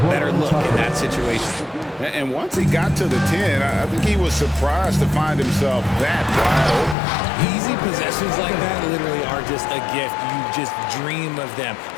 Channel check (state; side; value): drops out; right; at 7.0 s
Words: better look in that situation. And once he got to the 10, I think he was surprised to find himself that wide open. Easy possessions like that literally are just a gift. You just dream of them.